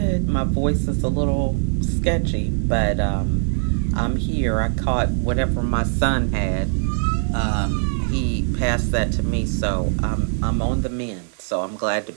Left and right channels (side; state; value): left; silent; 65 dB below the other